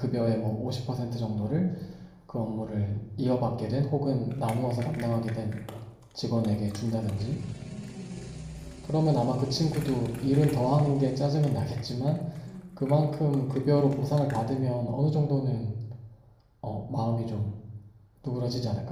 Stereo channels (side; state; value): both; identical; correlation 1.00